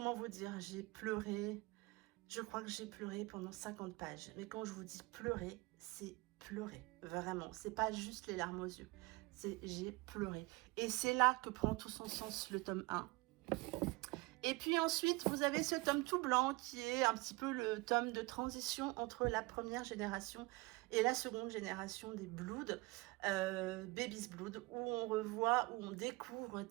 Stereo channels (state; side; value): quieter; left; 23.7 dB